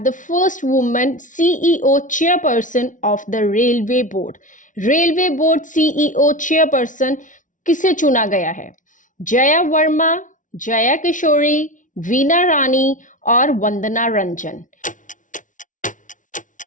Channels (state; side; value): late; right; 0.37 ms